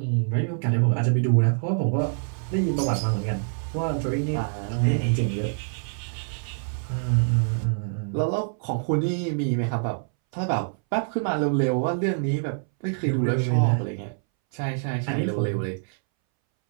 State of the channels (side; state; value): left; silent; 61 dB below the other